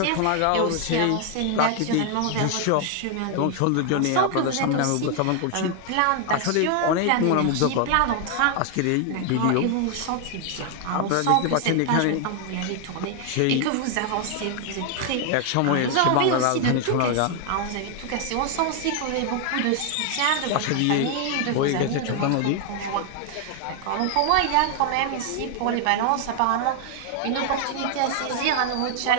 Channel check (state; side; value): different; both; correlation 0.00